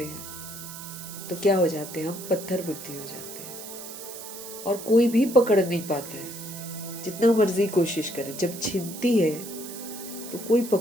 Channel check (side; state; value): right; noise; hiss, 11 dB below the sound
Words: हैं, तो क्या हो जाते हैं? हम पत्थर बुद्धि हो जाते हैं, और कोई भी पकड़ नहीं पाता है, जितना मर्जी कोशिश करे। जब छिनती है तो कोई